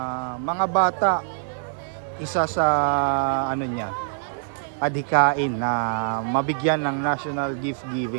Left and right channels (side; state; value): left; silent; digital silence